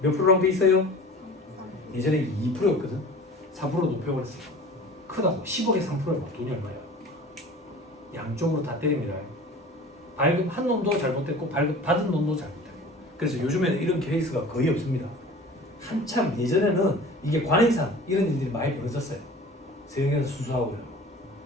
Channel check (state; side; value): normal; both; correlation 0.41